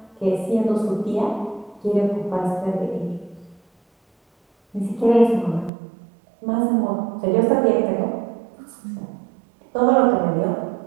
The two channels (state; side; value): drops out; left; at 5.7 s